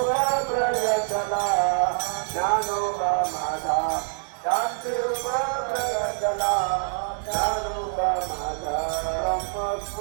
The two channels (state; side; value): silent; left; digital silence